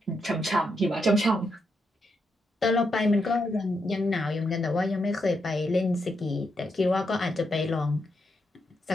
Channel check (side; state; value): both; normal; correlation 0.81